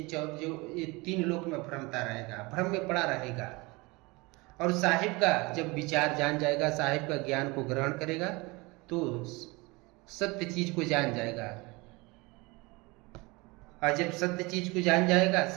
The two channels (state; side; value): quieter; left; 24.8 dB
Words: 3 लोक में भ्रमता रहेगा, भ्रम में पड़ा रहेगा। और साहिब का जब विचार जान जाएगा, साहिब का ज्ञान को ग्रहण करेगा, तो सत्य चीज को जान जाएगा। और जब सत्य चीज को जान जाएगा,